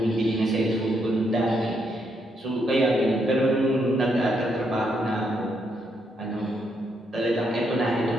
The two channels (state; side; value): normal; both; correlation 0.77